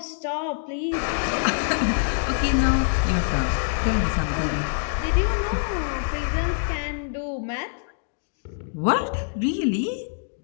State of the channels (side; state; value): right; silent; digital silence